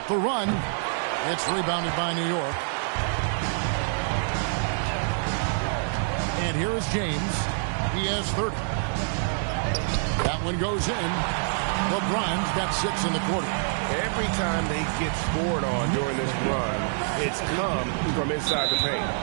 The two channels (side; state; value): left; silent; digital silence